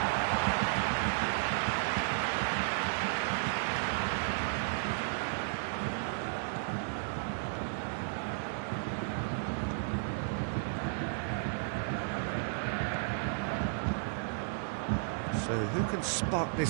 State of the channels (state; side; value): silent; left; digital silence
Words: So who can spark